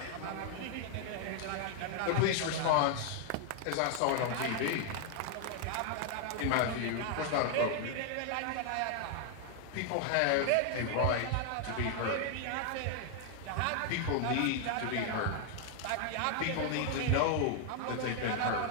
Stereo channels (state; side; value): different; both; correlation 0.00